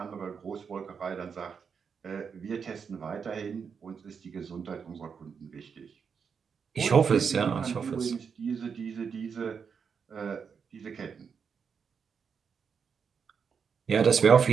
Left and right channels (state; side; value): quieter; left; 6.3 dB